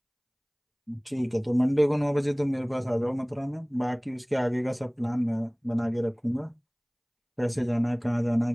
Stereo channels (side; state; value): both; identical; correlation 1.00